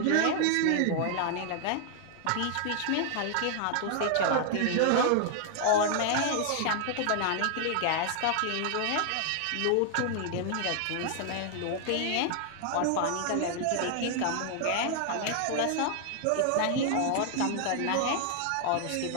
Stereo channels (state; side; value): different; both; correlation 0.00